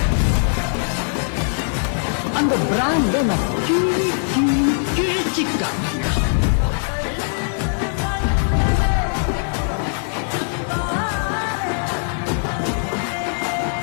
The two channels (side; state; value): right; silent; 58 dB below the other